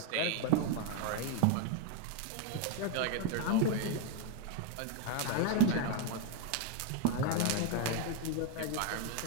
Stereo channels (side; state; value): both; different; correlation 0.01